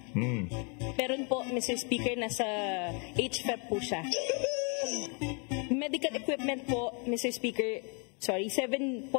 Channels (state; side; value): quieter; right; 36.1 dB